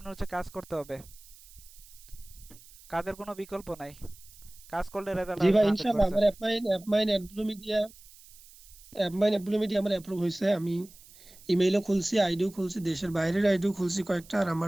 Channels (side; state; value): right; noise; hiss, 22 dB below the sound